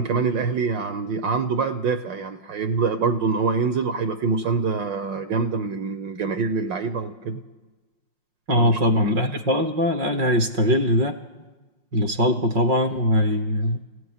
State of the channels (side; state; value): left; late; 5.6 ms